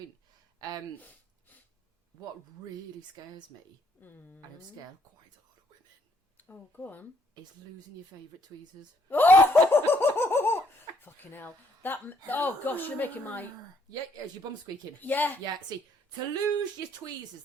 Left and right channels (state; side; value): normal; both; correlation 0.68